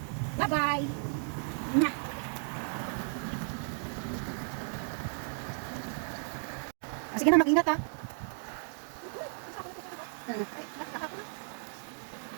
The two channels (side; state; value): left; silent; 55 dB below the other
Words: Bye-bye! Mwah! Sige na, mag-ingat ha.